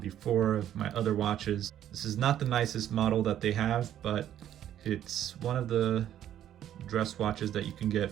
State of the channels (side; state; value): left; quieter; 11.1 dB